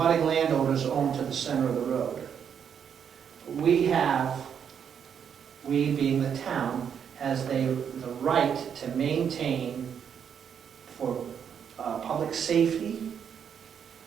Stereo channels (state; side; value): quieter; left; 7.8 dB